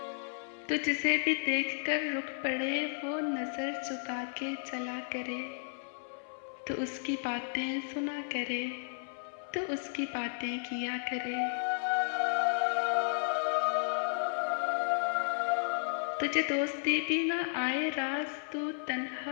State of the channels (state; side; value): silent; right; 55 dB below the other